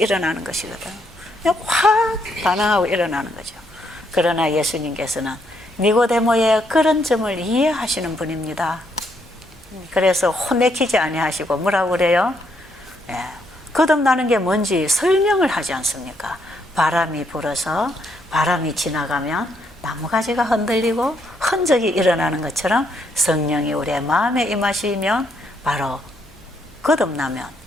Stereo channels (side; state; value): both; normal; correlation 0.74